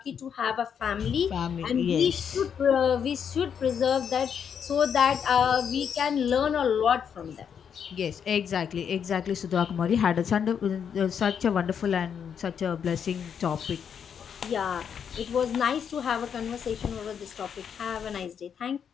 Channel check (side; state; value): right; quieter; 7.6 dB